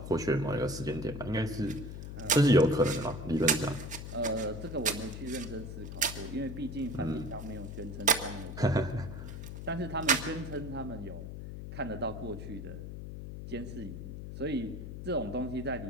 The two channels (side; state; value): left; noise; hum, 8 dB below the sound